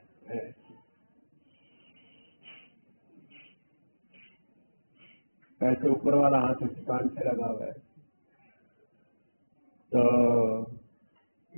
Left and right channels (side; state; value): both; inverted; correlation -1.00